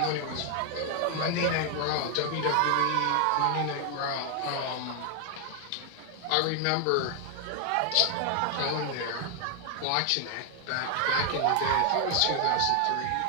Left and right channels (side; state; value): both; different; correlation 0.00